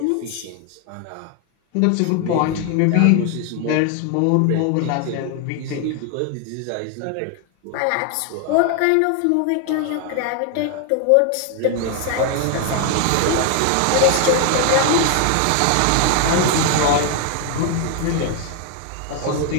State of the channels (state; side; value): different; both; correlation 0.00